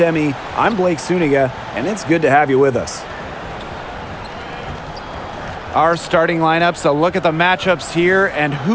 I'm Blake Suniga, and it's good to have you with us. Our starting lineups, a look at the matchups here, and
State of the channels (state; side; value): identical; both; correlation 1.00